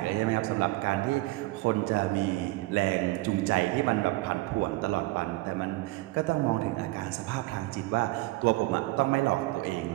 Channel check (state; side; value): quieter; left; 20.2 dB